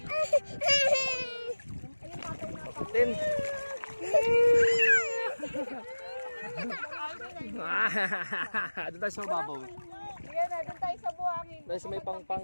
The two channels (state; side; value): inverted; both; correlation -1.00